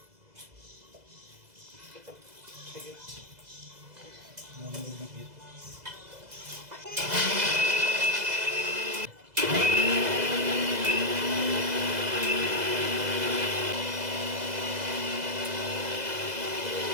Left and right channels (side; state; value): left; late; 2.0 ms